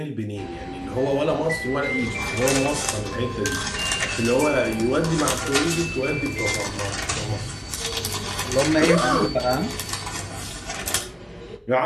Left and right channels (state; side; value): identical; both; correlation 1.00